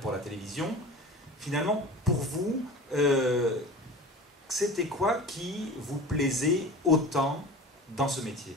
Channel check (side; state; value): both; normal; correlation 0.36